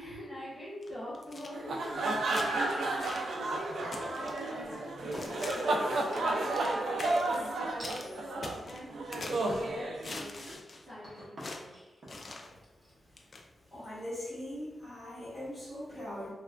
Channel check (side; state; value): both; normal; correlation 0.83